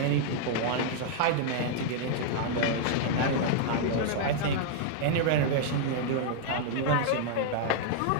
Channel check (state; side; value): different; both; correlation -0.01